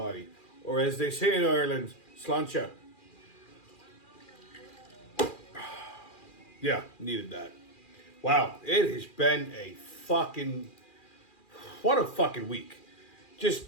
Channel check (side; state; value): right; late; 2.4 ms